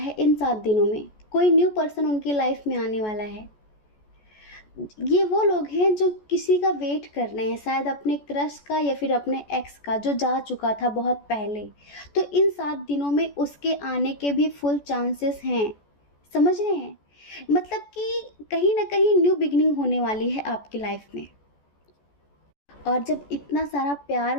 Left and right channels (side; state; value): right; late; 14 ms